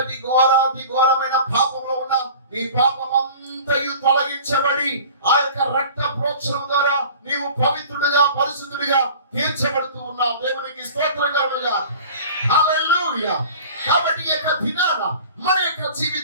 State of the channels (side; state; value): both; inverted; correlation -0.42